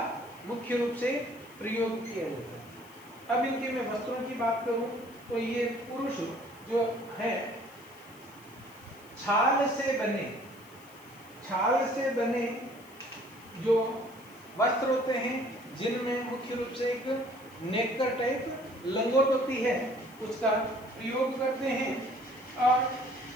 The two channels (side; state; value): left; noise; hiss, 24 dB below the sound